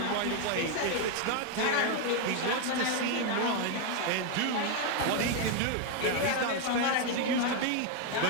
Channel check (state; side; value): different; both; correlation 0.01